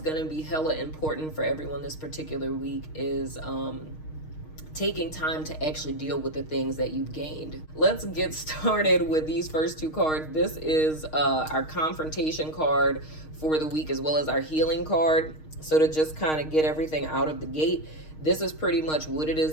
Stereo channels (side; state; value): right; late; 6.4 ms